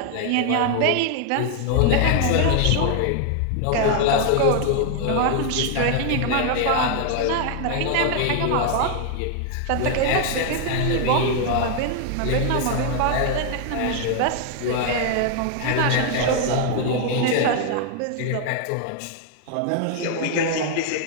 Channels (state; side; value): different; both; correlation 0.00